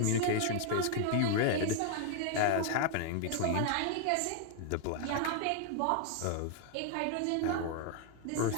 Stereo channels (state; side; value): different; both; correlation 0.00